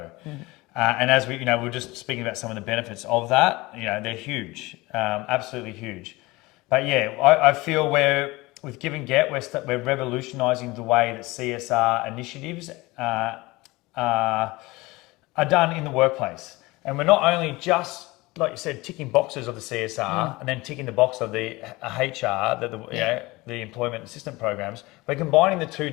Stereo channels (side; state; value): right; quieter; 21.6 dB